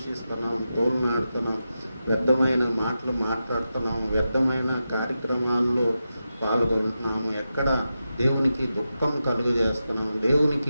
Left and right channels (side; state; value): both; inverted; correlation -0.90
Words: తోలునాడుతున్నాం, వ్యర్థమైన మాటలు మాట్లాడుతున్నాం, వ్యర్థమైన కార్యక్రమాల్లో పాల్గొంటున్నాము, ఎక్కడ దేవునికి దుఃఖం కలుగజేస్తున్నాం,